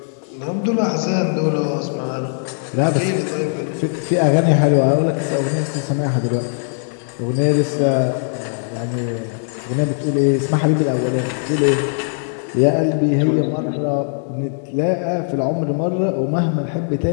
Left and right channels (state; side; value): silent; right; digital silence